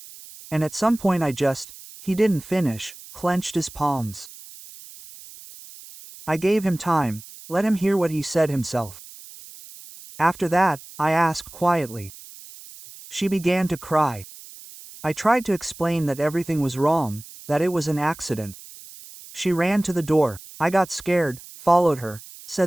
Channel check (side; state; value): right; noise; hiss, 18 dB below the sound